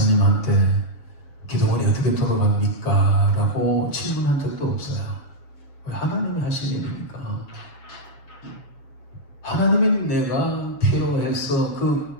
기도원이 어떻게 돌아갑니까? 라고 질문한 적도 없어요. 왜? 하나님이 하신 일이니까. 하나님이 내가 필요해서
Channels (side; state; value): right; late; 7.1 ms